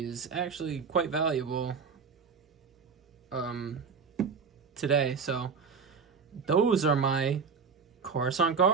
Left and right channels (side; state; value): left; quieter; 5.6 dB